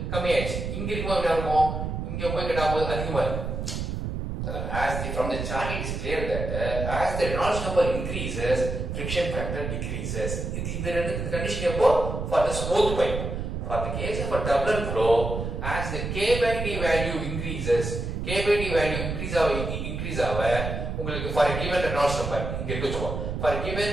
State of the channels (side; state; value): right; noise; rumble, 4 dB below the sound